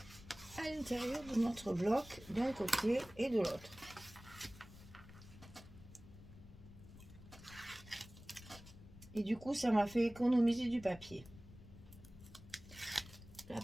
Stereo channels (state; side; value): noise; left; rumble, 18 dB below the sound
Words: à l'intérieur de notre bloc, d'un côté et de l'autre. Et du coup, ça m'a fait économiser du papier. La